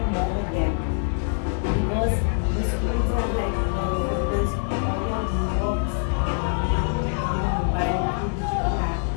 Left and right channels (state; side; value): silent; right; 62 dB below the other